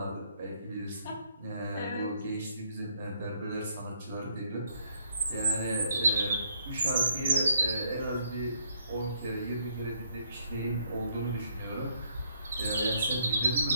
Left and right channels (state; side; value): inverted; both; correlation -0.70